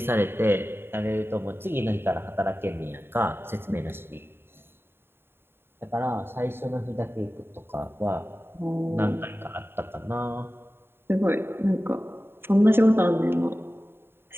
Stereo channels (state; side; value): late; left; 0.11 ms